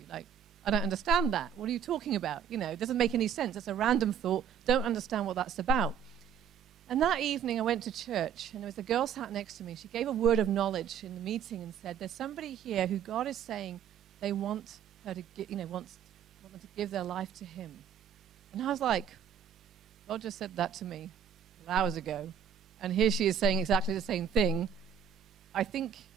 Like, I don't understand that. What are you talking about? You know, it doesn't make any sense. It's a random thought. Don't understand what that's about. And that evening I went to church, and there was a girl sat next to me. She gave a word of knowledge in the meeting and said, there's somebody here who God is saying they want her to, want them to give their life to him. And I was like, God just said that to me hours ago. And here she is saying exactly the same thing. I think,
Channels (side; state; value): left; quieter; 7.8 dB